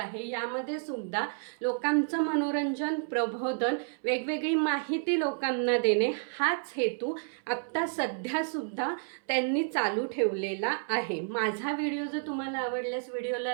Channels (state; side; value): silent; left; 57 dB below the other